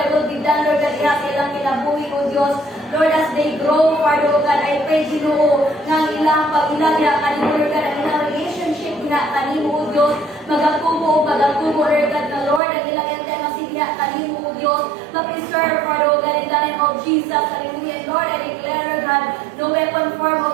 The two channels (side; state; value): left; drops out; at 12.6 s